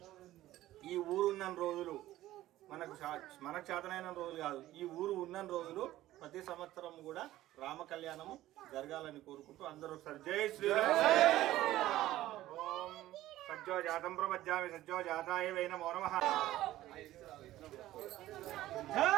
ఈ ఊరు ఉన్న రోజులు మనకు చేతనైన రోజులు కాదు, ఈ ఊరు ఉన్న రోజులు ప్రతి సంవత్సరం కూడా రామ కళ్యాణము జరగాలని కోరుకుంటూ అందరూ ఒకసారి జై శ్రీరామ్. ఓం సజ్జో జాతం ప్రపద్యామి సజ్జో జాతాయ వై నమో నమః. జై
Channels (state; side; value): quieter; left; 15.0 dB